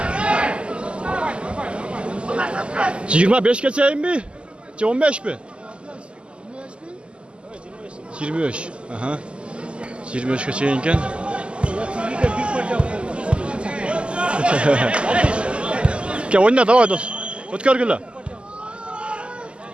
25 geçeyim mi? 15 mi? 25. Aha. 25 geçeyinken. Gel oyna davay dost. Ötkör gülle.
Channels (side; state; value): left; late; 0.052 ms